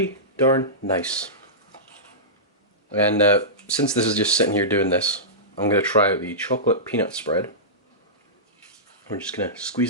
darn nice. And since this is just sitting here doing this, I'm going to try out the chocolate peanut spread. We're just going to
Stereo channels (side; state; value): both; normal; correlation -0.18